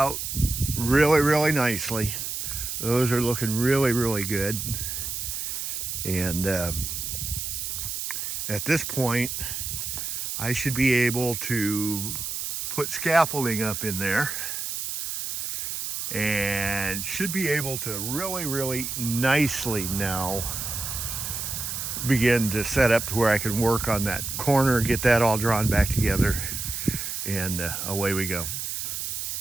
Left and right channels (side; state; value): right; noise; hiss, 4 dB below the sound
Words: really nicely. Those are looking really good, and at this point I should be able to put scaffolding up in there and should be able to really nicely now begin to set up to where I can work on that corner, get that all drawn back together, and away we go.